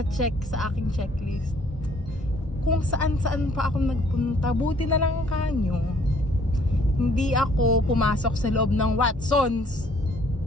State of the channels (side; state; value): both; normal; correlation 0.61